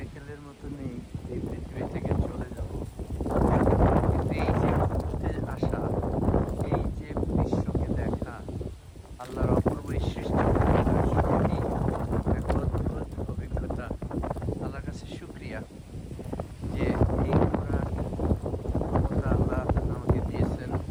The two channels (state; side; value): identical; both; correlation 1.00